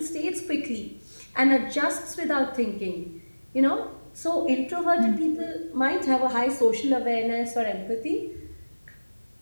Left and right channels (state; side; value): inverted; both; correlation -1.00